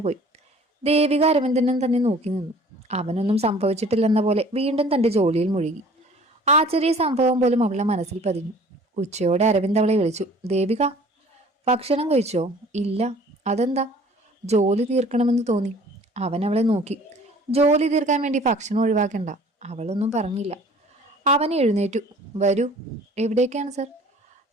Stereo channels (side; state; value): both; normal; correlation 0.50